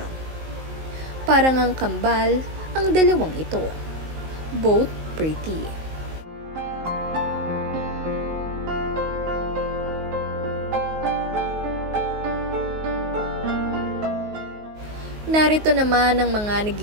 Parang ang kambal ang dalawang ito. Both pretty. Narito naman ang mga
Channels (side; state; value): left; late; 19 ms